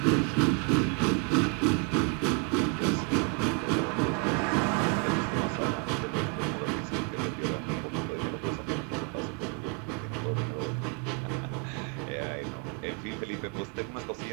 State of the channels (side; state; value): left; quieter; 36.0 dB